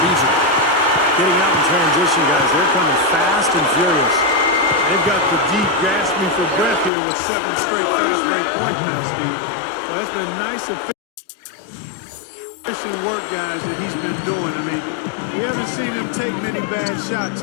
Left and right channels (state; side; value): drops out; right; at 6.9 s